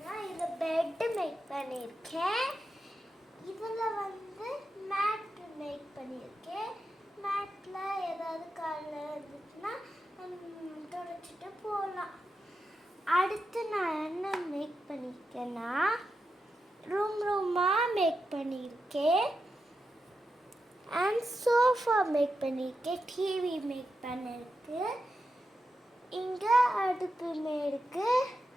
இதில் பெட்டு மேக் பண்ணியிருக்கேன். இதில் மேட் மேக் பண்ணியிருக்கேன். மேட்டில் ஏதாவது காலில் இருந்துச்சுன்னா துடைச்சிட்டு போகலாம். அடுத்து நான் என்ன மேக் பண்ணியிருக்கேன்னா ரூமாக மேக் பண்ணியிருக்கேன். அண்ட் சோஃபா மேக் பண்ணியிருக்கேன். டிவி மேக் பண்ணியிருக்கு. இங்கே அடுப்பு மேற்கு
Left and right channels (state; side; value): normal; both; correlation 0.88